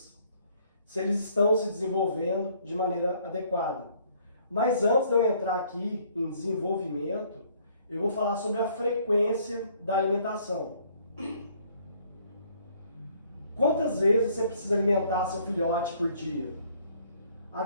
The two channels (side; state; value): both; inverted; correlation -0.62